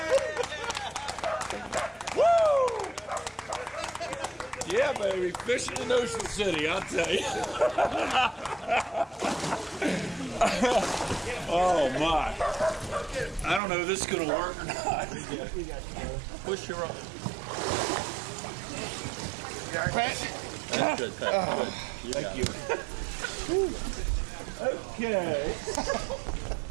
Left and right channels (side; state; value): left; drops out; at 13.6 s